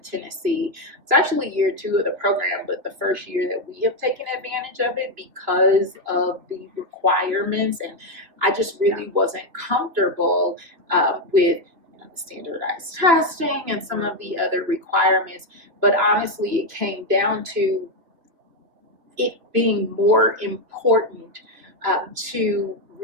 it's actually year 2 of the program, but the first year that we have taken advantage of it because of the requirements, and I just really wasn't comfortable with standardized testing and some of the other requirements. But honestly, it came down to it being more important to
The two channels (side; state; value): left; late; 2.9 ms